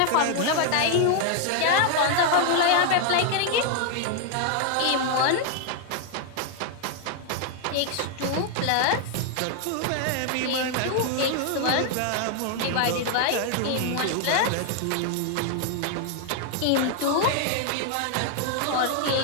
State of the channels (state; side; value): different; both; correlation 0.00